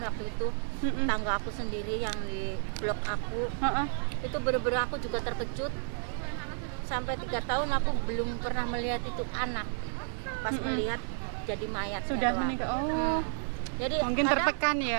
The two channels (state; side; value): silent; left; digital silence